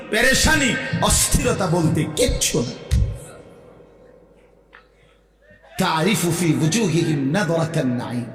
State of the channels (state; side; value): identical; both; correlation 1.00